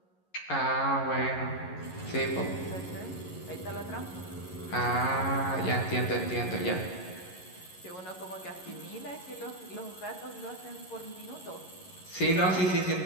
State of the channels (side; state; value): right; late; 11 ms